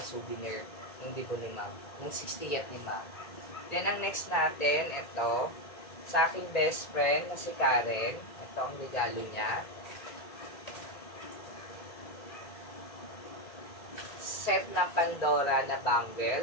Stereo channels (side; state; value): right; late; 1.9 ms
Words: souvenir. Yung dibo ni Ma. Yung 60th ni Ma. Then, ang next natin, ito. Sa aking best friend, na si Karen. Ito ang regalo niya. Set na Pandora na